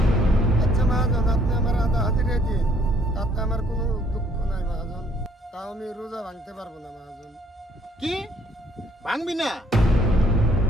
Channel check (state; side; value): normal; both; correlation 0.64